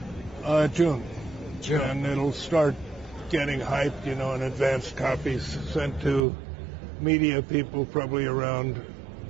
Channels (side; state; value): left; drops out; at 6.2 s